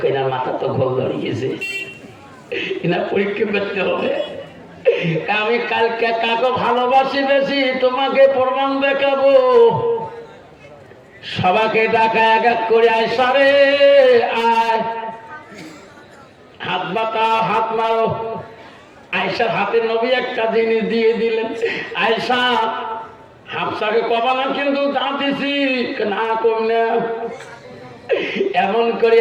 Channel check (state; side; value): identical; both; correlation 1.00